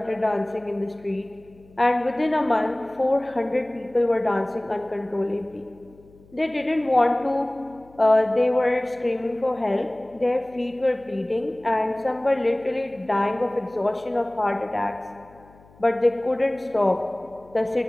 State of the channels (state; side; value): noise; left; hum, 26 dB below the sound